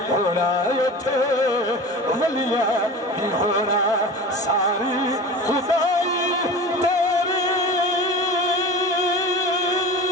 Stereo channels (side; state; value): both; normal; correlation 0.34